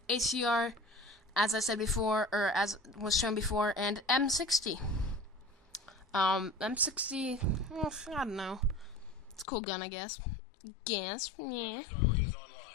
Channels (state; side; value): drops out; right; at 9.5 s